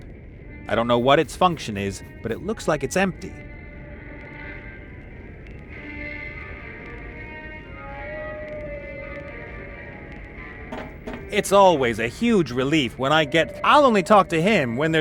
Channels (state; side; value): identical; both; correlation 1.00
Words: I don't know what its function is, but it looks like it's empty. It's always a huge relief when I'll only talk to him when